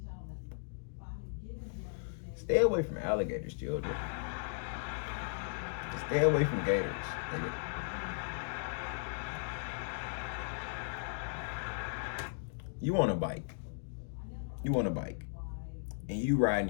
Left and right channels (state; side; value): silent; right; digital silence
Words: Stay away from alligators, children. Just stay away from gators, nigga. You on a bike. You on a bike. And you riding